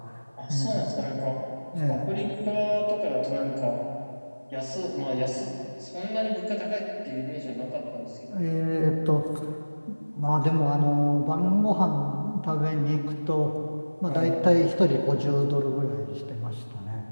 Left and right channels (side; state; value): both; inverted; correlation -1.00